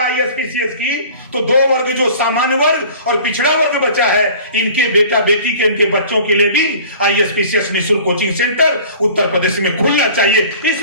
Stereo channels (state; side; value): inverted; both; correlation -0.45